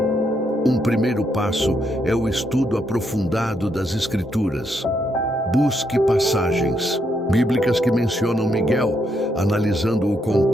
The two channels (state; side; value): normal; both; correlation 0.77